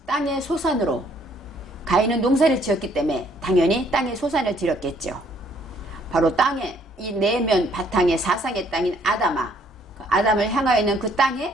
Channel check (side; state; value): both; normal; correlation 0.64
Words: 땅의 소산으로, 가인은 농사를 지었기 때문에 당연히 땅의 소산을 드렸겠죠. 바로 땅에 이 내면 바탕의 사상의 땅인 아담아, 아담을 향하여 있는 그